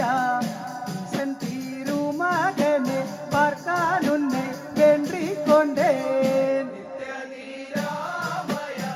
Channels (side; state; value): both; identical; correlation 1.00